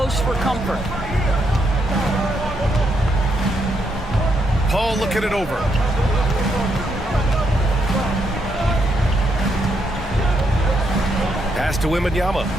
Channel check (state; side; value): normal; both; correlation 0.77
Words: for comfort. Paul looking it over. Pass to Wembanyama.